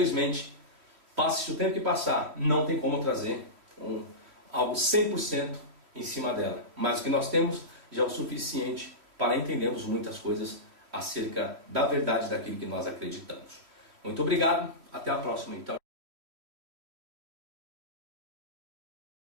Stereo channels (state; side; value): late; left; 3.1 ms